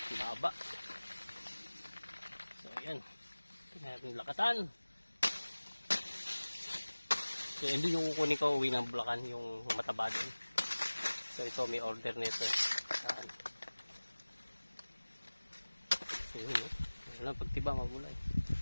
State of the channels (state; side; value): inverted; both; correlation -1.00